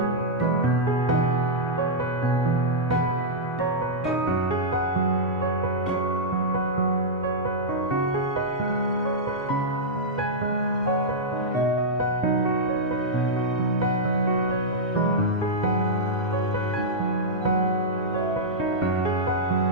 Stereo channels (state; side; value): normal; both; correlation -0.09